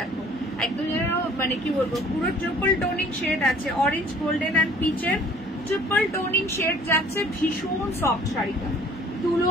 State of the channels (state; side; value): normal; both; correlation 0.54